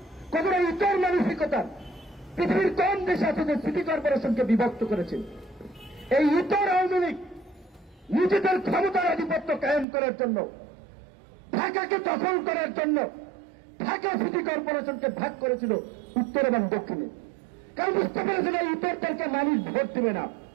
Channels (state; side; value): drops out; left; at 9.9 s